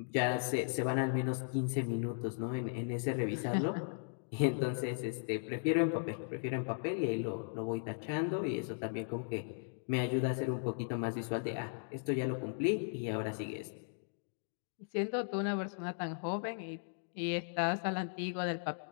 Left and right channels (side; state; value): right; silent; digital silence